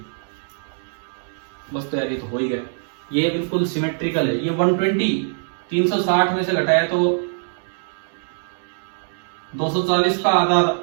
बस तो यार ये तो हो ही गया, ये बिल्कुल सिमेट्रिकल है। ये 120 360 में से घटाया तो 240 का आधा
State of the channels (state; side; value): silent; left; digital silence